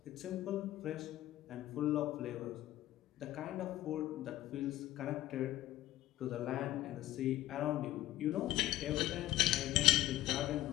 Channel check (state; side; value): quieter; right; 14.8 dB